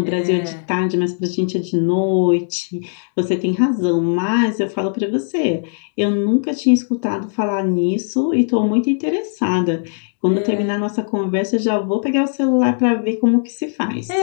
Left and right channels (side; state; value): right; silent; digital silence